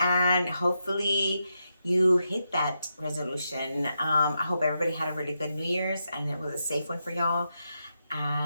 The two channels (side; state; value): both; inverted; correlation -0.85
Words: hopefully you hit that resolution. I hope everybody had a really good New Year's and it was a safe one for y'all.